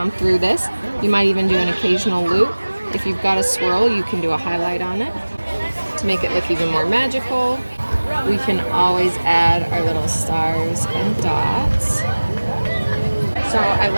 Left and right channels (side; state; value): both; inverted; correlation -1.00